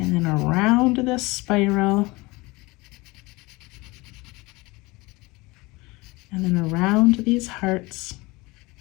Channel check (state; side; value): quieter; right; 23.2 dB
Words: then around this spiral, and then around these hearts.